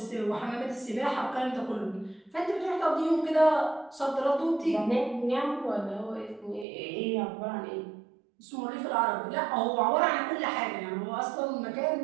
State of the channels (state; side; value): drops out; left; at 6.7 s